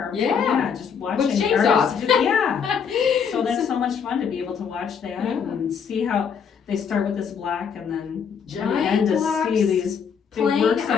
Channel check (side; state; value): right; quieter; 6.9 dB